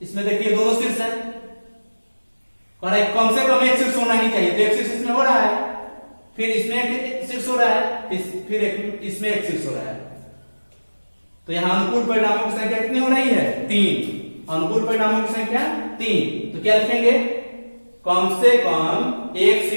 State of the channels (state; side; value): inverted; both; correlation -1.00